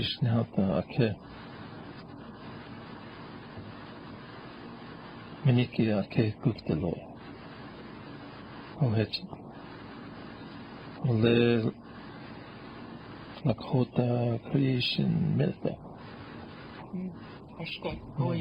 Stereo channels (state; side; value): identical; both; correlation 1.00